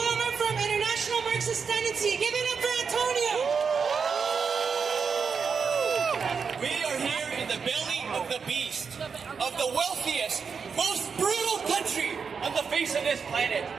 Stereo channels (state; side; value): quieter; left; 5.9 dB